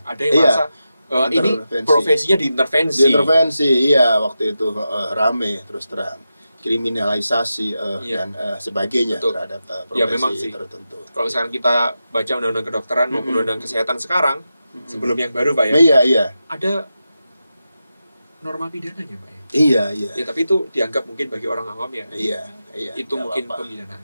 Ada yang merasa ini profesinya diintervensi. Diintervensi, iya waktu itu rame terus terang. Kriminalisasi dan sebagainya terhadap profesi tertentu. Kalau misalkan kita baca undang-undang kedokteran maupun undang-undang kesehatan sekarang, sebelum yang baru Pak ya. Iya. Ada norma pidananya Pak ya. Iya. Ya tapi itu dianggap mungkin bagi orang awam ya. Iya. Itu mungkin pemidanaan.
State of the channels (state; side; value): inverted; both; correlation -0.90